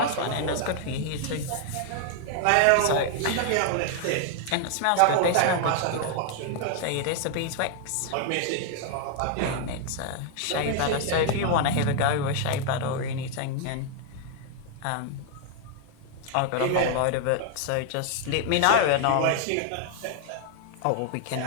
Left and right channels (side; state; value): both; different; correlation 0.00